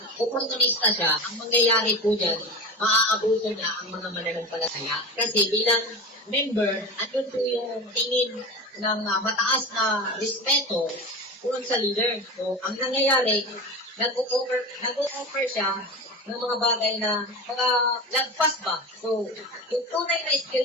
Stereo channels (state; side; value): normal; both; correlation 0.27